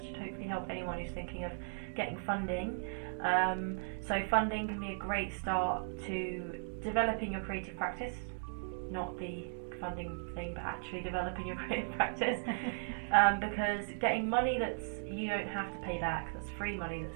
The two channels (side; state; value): left; silent; digital silence